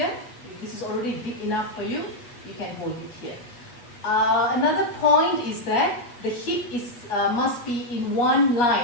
If this is already deep enough for you, you can hold it here. Another point is that the hip must be in one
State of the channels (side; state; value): right; late; 8.3 ms